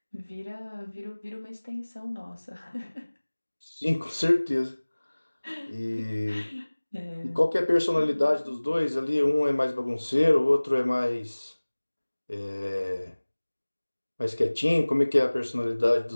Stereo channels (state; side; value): inverted; both; correlation -1.00